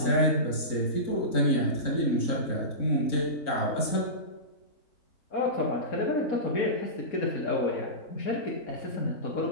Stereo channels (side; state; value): right; late; 3.9 ms